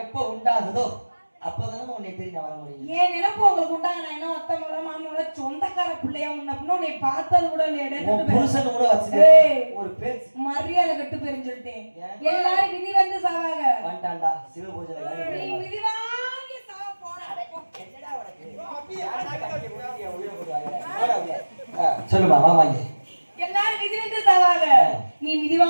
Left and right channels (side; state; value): both; inverted; correlation -1.00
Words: எப்ப உண்டாகுதோ அப்பதானே உன்னை தெரியும் வர முடியும். ஏன் நினைப்பு உங்களுக்கு உண்டாக? நான் என்ன ஒத்தமோட மாமோட சொந்தக்கார பிள்ளையா முன்ன உன்னை பார்த்தது கூட இல்லையா? புருஷன் கூட வச்சு ஒரு பேச்சு மரியாதை கட்டு போயிருன்னு சொல்லிட்டேன். எல்லாரும் விதி வந்து சாவாங்க. வந்துட்டான்டா சிவ பூஜை விதி வாங்கி சாவ போற. சொல்லுமா மாமாங்க, எல்லாரும் விதி வந்து சாவாங்க, நீ விதி